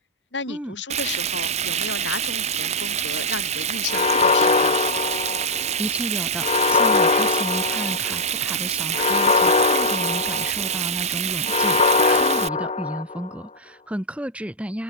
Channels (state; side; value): normal; both; correlation -0.06